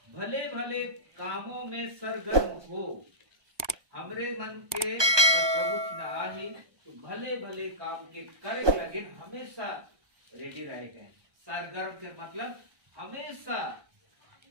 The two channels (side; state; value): left; late; 1.2 ms